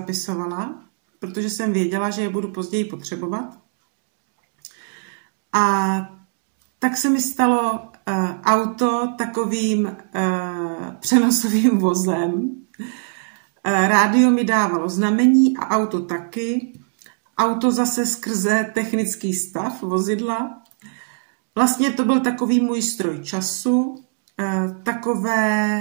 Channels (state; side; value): silent; left; digital silence